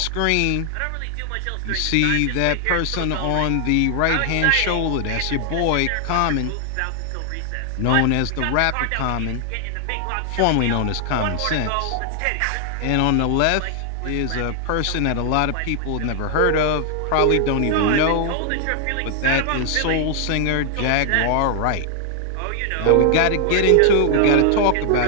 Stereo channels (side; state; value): both; different; correlation 0.00